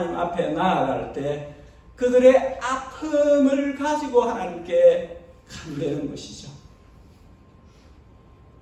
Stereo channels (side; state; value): both; identical; correlation 1.00